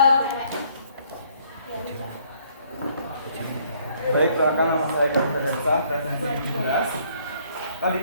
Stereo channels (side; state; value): both; inverted; correlation -0.64